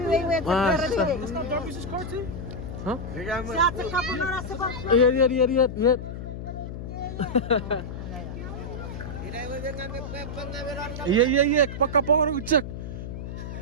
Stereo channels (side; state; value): left; noise; hum, 8 dB below the sound